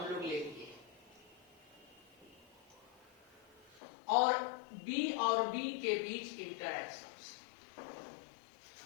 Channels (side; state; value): right; drops out; at 3.8 s